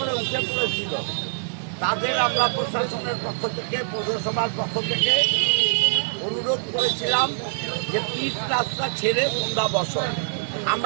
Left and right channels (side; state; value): left; silent; digital silence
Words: উঠে পড়েছিল তাদের আমরা প্রশাসনের পক্ষ থেকে পৌরসভার পক্ষ থেকে অনুরোধ করেছিলাম যে পিচ রাস্তা ছেড়ে তোমরা বসো।